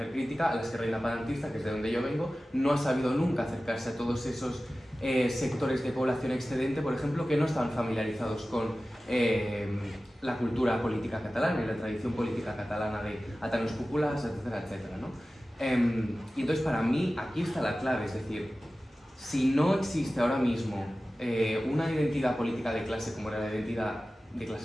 crítica, a la izquierda independentista, que es de donde yo vengo, no ha sabido nunca acercarse a todos esos sectores de población excedente, por ejemplo, que no están familiarizados con la cultura política catalana y la tradición política catalana de atanos cúpulas, etcétera, etcétera, ¿no? Y entonces para mí aquí está la clave, es decir, si no existe ahora mismo una identidad política de clase como era la identidad de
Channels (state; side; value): normal; both; correlation 0.96